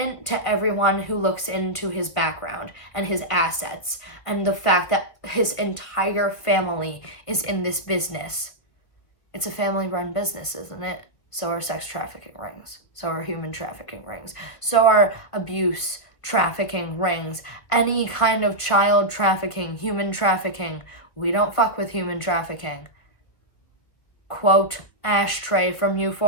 to everyone who looks into his background and his assets and the fact that his entire family is in this business. It's a family-run business, isn't it? So are sex trafficking rings. So are human trafficking rings. So are abuse trafficking rings. Any kind of child trafficking, human trafficking. We don't fuck with human trafficking. Quote Ashtray from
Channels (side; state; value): right; late; 1.8 ms